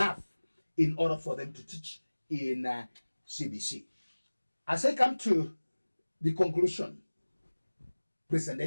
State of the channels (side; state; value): both; inverted; correlation -1.00